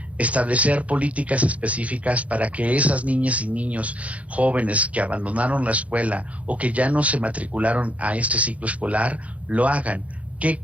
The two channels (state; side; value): late; left; 0.066 ms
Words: establecer políticas específicas para que esas niñas y niños jóvenes que abandonaron la escuela o que ya no se matricularon a este ciclo escolar, lo hagan. ¿Qué